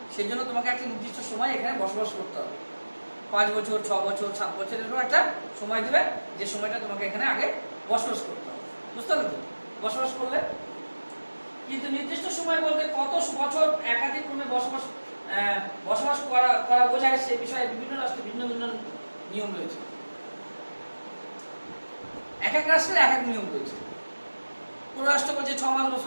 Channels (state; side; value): inverted; both; correlation -1.00